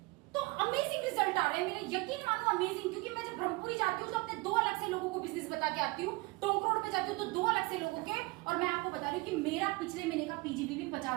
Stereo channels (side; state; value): left; quieter; 24.1 dB